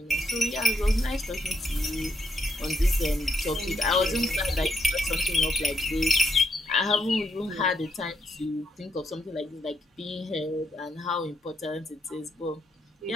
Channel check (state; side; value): normal; both; correlation 0.78